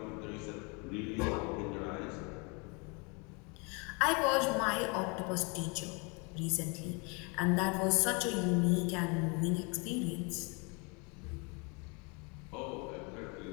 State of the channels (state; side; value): quieter; right; 31.4 dB